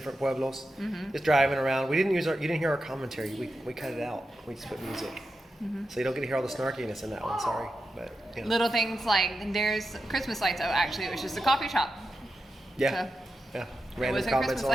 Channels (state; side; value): normal; both; correlation 0.89